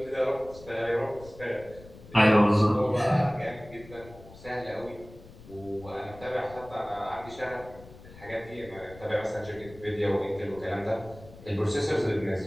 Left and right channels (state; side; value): noise; left; rumble, 19 dB below the sound